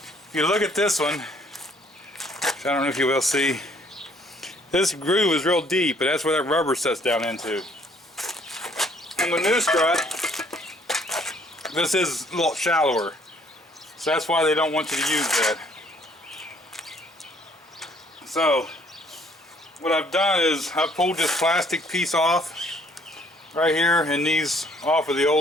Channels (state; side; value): normal; both; correlation 0.62